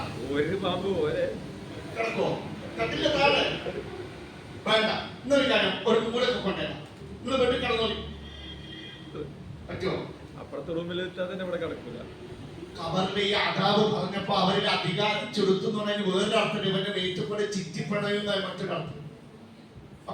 ഒരു പാമ്പ് പോലെ കിടക്കോ കട്ടിലെ താഴെ? വേണ്ട, ഇന്നൊരു കാര്യം, ഒരു മൂലൊക്കെ കൊണ്ടുവരാം, നിങ്ങൾ വീട്ടിൽ കിടന്നോളി. പറ്റുമോ? അപ്പുറത്തെ റൂമിൽ തന്നെ ഇവിടെ കിടക്കൂല. ഖബറിലെ ഈ അതാബ് പറഞ്ഞപ്പോ അവരിൽ അധികാരം ചെലുത്തുന്ന വേറൊരു അർത്ഥം, ഇവന്റെ വെയിറ്റുകൂടെ ചിറ്റിപ്പണയുന്ന മറ്റൊരർത്ഥം.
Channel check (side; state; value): both; identical; correlation 1.00